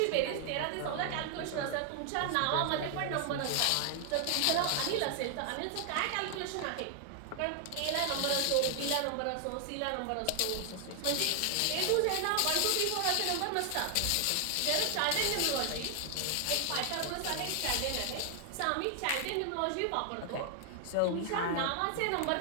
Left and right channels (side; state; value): both; different; correlation 0.00